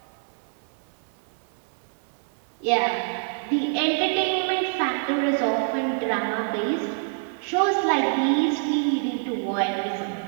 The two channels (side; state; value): left; silent; 61 dB below the other